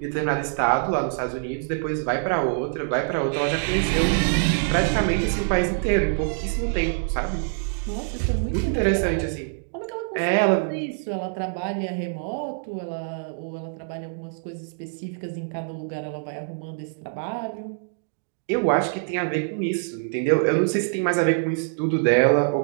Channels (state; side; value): silent; left; digital silence